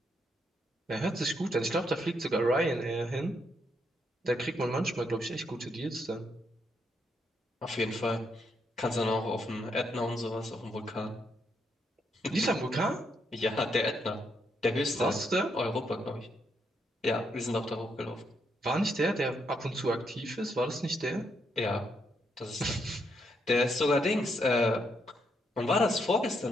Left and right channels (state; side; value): normal; both; correlation 0.77